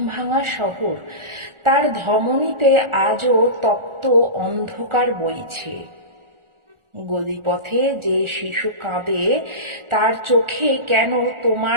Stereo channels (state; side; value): late; left; 1.4 ms